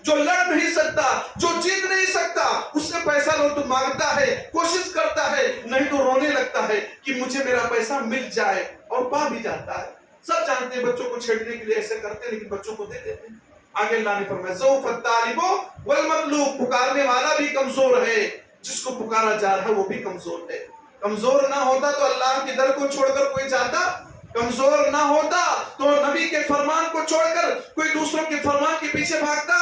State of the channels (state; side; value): identical; both; correlation 1.00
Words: جو لڑ نہیں سکتا، جو جیت نہیں سکتا، اس سے پیسہ لو تو مانگتا ہے، کوشش کرتا ہے، نہیں تو رونے لگتا ہے کہ مجھے میرا پیسہ مل جائے، اور پا بھی جاتا ہے۔ سب جانتے ہیں بچوں کو چھیڑنے کے لیے ایسے کرتے ہیں، لیکن بچوں کو دے دیتے ہیں۔ آگے اللہ نے فرمایا ضعف الطالب والمطلوب، پکارنے والا بھی کمزور ہے، جس کو پکارا جا رہا ہے وہ بھی کمزور ہے. کمزور نہ ہوتا تو اللہ کے در کو چھوڑ کر کوئی جاتا؟ کمزور نہ ہوتا تو نبی کے فرمان کو چھوڑ کر کوئی دوسروں کے فرمان کے پیچھے بھاگتا؟